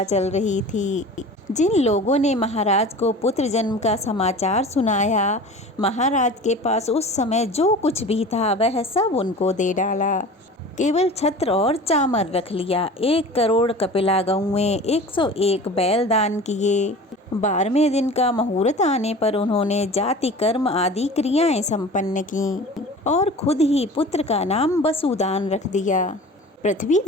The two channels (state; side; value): normal; both; correlation 0.39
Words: चल रही थी। जिन लोगों ने महाराज को पुत्र जन्म का समाचार सुनाया, महाराज के पास उस समय जो कुछ भी था वह सब उनको दे डाला। केवल छत्र और चामर रख लिया। 1 करोड़ कपिला गौएं, 101 बैल दान किए। 12वें दिन का मुहूर्त आने पर उन्होंने जाति कर्म आदि क्रियाएं संपन्न की और खुद ही पुत्र का नाम वसुदान रख दिया। पृथ्वी